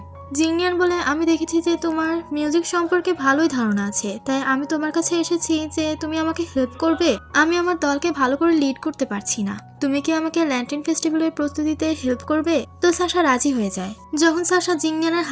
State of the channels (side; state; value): both; identical; correlation 1.00